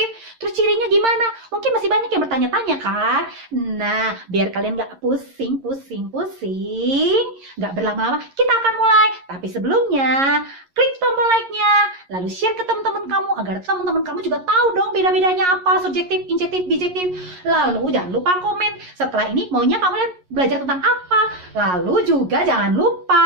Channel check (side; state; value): left; late; 11 ms